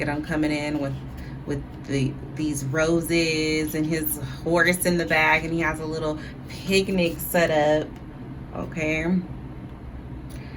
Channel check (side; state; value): both; identical; correlation 1.00